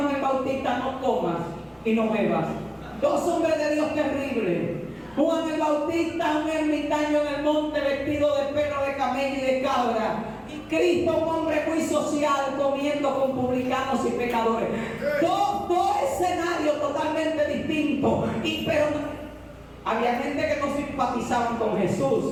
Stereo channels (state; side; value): identical; both; correlation 1.00